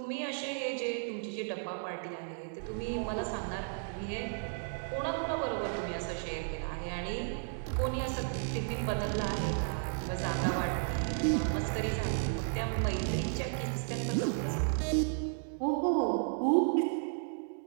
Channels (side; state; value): left; silent; digital silence